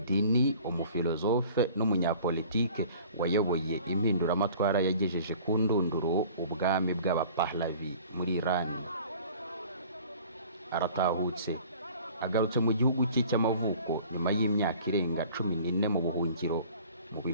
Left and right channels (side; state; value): both; inverted; correlation -0.48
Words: umufilozofe n'umunyapolitike wayoboye impinduramatwara yagejeje ku ndunduro ubwami bw'abapahlavi muri Iran. Aratahutse agarutse mu gihugu cye cy'amavuko nyuma y'imyaka irenga 14 mu buhungiro mu